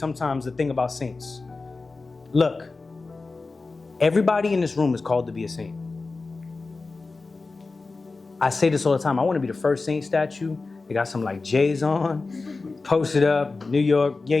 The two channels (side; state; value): right; quieter; 3.8 dB